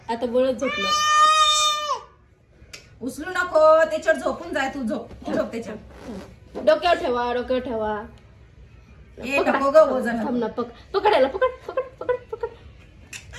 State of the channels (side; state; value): both; identical; correlation 1.00